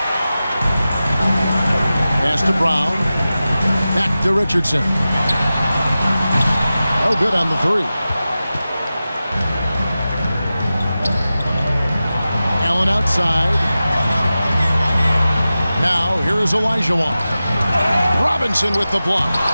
Pass to Brown. Back to Richardson. Oh, good on the three. Allen outside. Now, here is Olajuwon. Robinson with the block.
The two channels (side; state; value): both; inverted; correlation -0.94